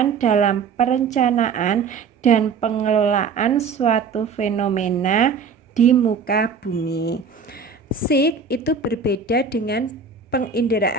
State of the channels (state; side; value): quieter; left; 5.5 dB